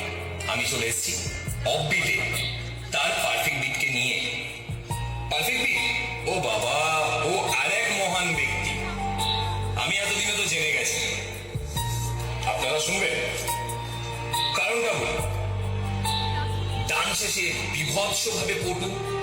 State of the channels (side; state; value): both; identical; correlation 1.00